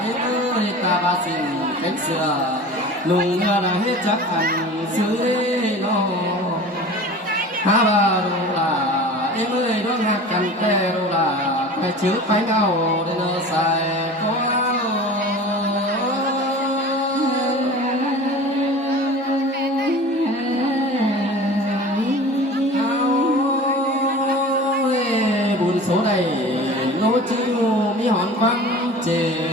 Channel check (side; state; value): both; normal; correlation 0.38